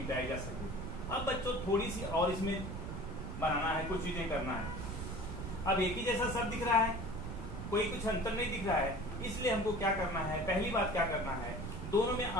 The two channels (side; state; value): right; noise; rumble, 6 dB below the sound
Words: जा सके। अब बच्चों थोड़ी सी और इसमें बनाना है, कुछ चीजें करना है। अब एक ही जैसा सब दिख रहा है, कोई कुछ अंतर नहीं दिख रहा है, इसलिए हमको क्या करना है, पहली बात क्या करना है, दोनों में